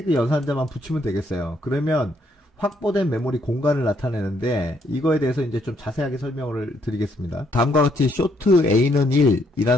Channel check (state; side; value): normal; both; correlation 0.71